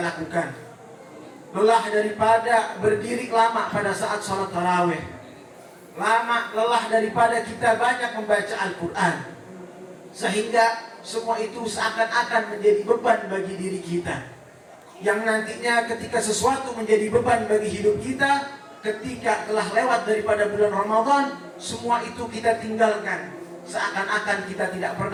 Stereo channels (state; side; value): identical; both; correlation 1.00